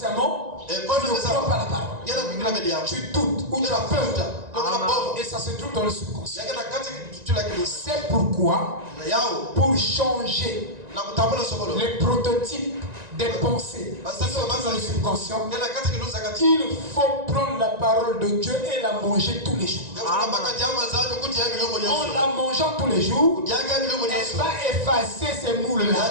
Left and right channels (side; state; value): left; late; 1.9 ms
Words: tu ne crois pas la parole. Tu doutes ou tu as peur. Et ça se trouve dans le subconscient. C'est pourquoi, pour changer les prototypes des pensées qui sont dans le subconscient, il faut prendre la parole de Dieu et la manger tous les jours. En la mangeant tous les jours, elle va effacer ces